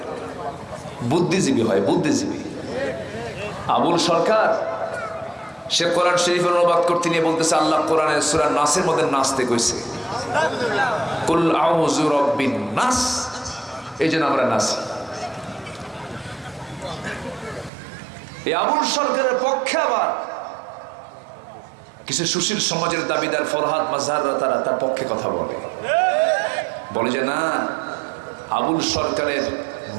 বুদ্ধিজীবী হয়, বুদ্ধিজীবী। আবুল সরকার সে কোরআন শরীফের অনুবাদ করতে নিয়ে বলতেছে আল্লাহ কোরআনের সূরা নাসের মধ্যে নাচতে কইছে, কুল আউযু রাব্বিন নাস, এই জন্য আমরা নাচি। এই আবুল সরকারের পক্ষে আবার কিছু সুশীল সমাজের দাবিদার ফরহাদ মাজহাররা তারা তার পক্ষে কথা বলে যে না, আবুল সরকারের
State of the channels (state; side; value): drops out; left; at 17.7 s